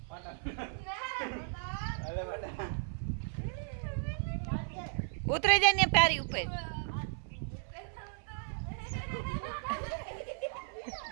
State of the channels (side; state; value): left; silent; 54 dB below the other